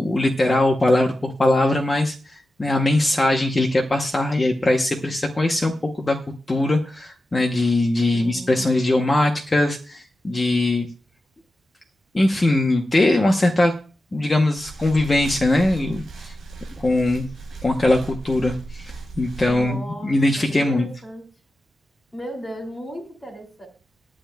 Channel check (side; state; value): both; normal; correlation 0.92